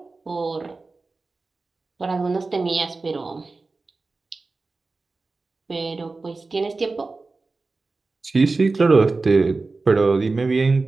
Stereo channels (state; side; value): quieter; left; 3.7 dB